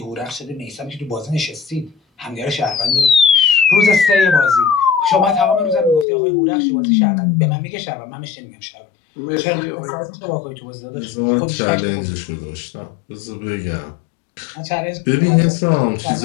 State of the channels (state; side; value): drops out; right; at 6.1 s